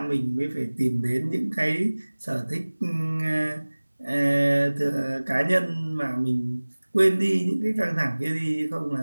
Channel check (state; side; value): inverted; both; correlation -1.00